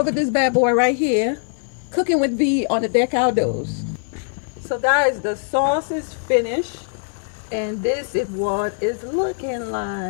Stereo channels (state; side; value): silent; right; 55 dB below the other